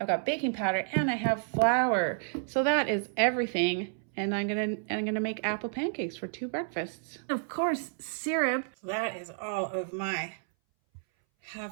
got baking powder and I have flour. So that is everything, and I'm gonna make apple pancakes for 2 breakfasts. Of course, syrup. So that is all of my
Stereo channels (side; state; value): left; silent; 58 dB below the other